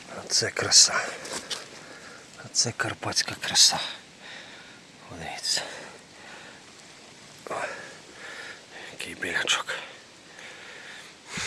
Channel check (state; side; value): identical; both; correlation 1.00